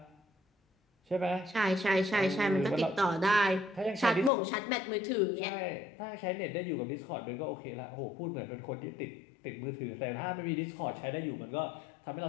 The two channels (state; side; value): drops out; right; at 4.3 s